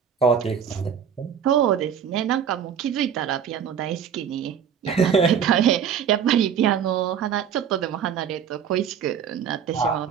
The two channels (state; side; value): quieter; left; 8.0 dB